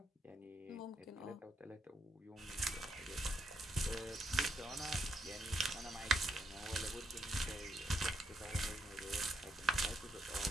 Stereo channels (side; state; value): both; normal; correlation 0.77